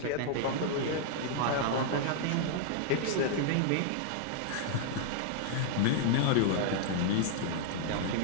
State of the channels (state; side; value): different; both; correlation -0.01